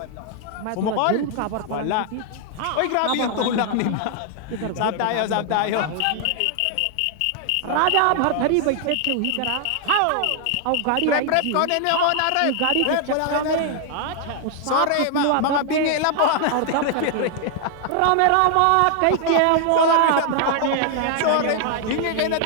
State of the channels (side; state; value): both; different; correlation 0.00